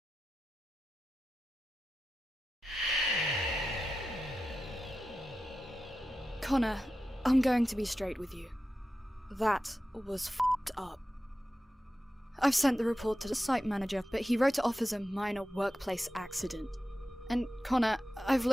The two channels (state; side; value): normal; both; correlation 0.92